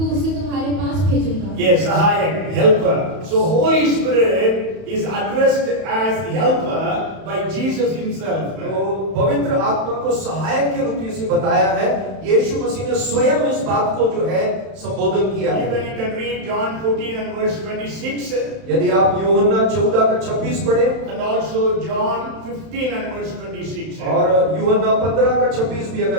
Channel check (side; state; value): left; late; 31 ms